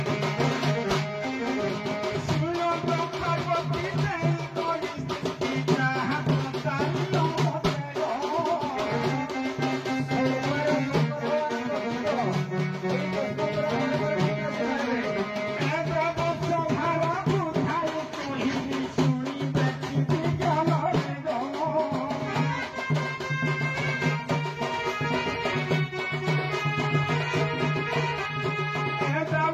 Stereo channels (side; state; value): both; identical; correlation 1.00